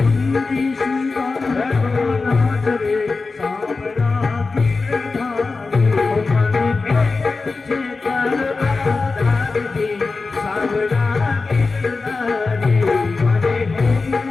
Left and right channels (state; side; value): quieter; right; 4.0 dB